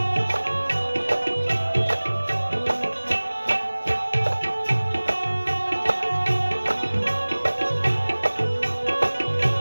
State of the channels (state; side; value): inverted; both; correlation -1.00